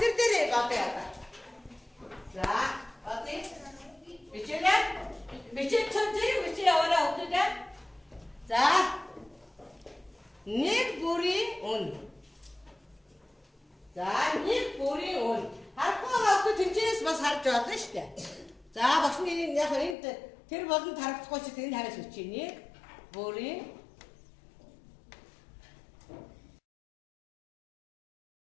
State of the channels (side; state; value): right; drops out; at 20.0 s